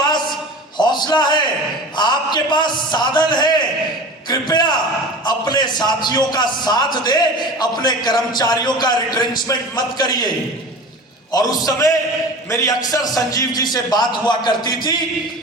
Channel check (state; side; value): normal; both; correlation 0.35